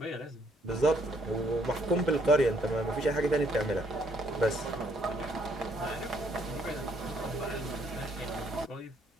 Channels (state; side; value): normal; both; correlation 0.68